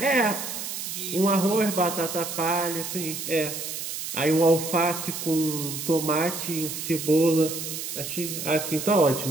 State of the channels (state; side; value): noise; right; hiss, 6 dB below the sound